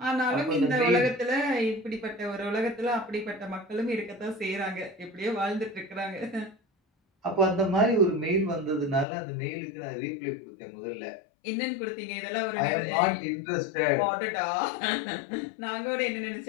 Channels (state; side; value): drops out; right; at 9.1 s